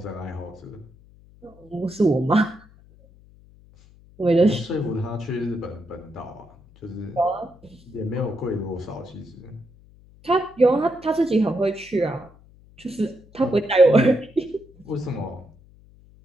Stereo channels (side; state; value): left; noise; hum, 25 dB below the sound